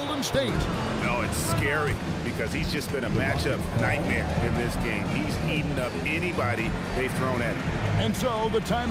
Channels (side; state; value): both; identical; correlation 1.00